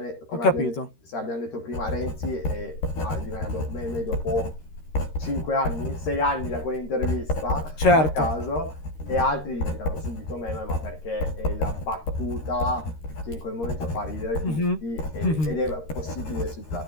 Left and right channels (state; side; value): late; right; 13 ms